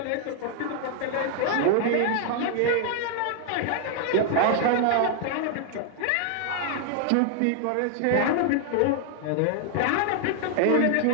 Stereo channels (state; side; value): different; both; correlation 0.00